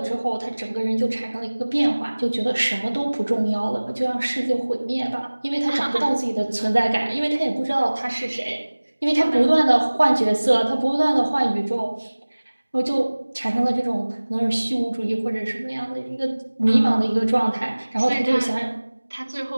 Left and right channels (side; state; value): both; inverted; correlation -1.00